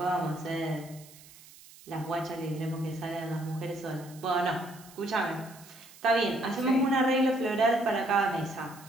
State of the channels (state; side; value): noise; right; hiss, 21 dB below the sound